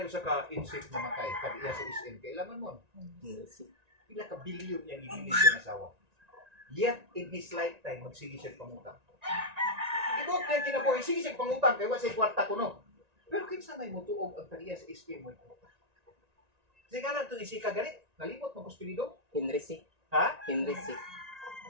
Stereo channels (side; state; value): left; late; 1.9 ms